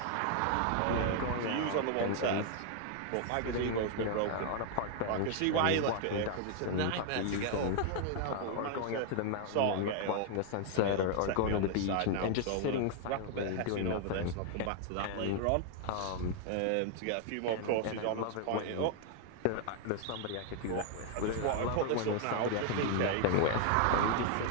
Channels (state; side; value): different; both; correlation 0.00